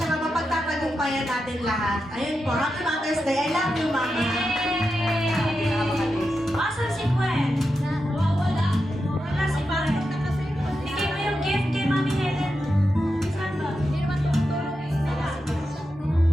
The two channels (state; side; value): normal; both; correlation 0.88